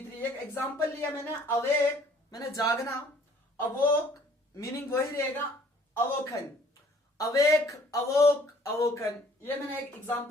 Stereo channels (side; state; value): both; normal; correlation 0.57